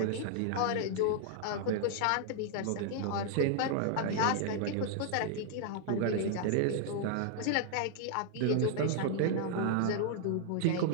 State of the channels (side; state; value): both; different; correlation -0.01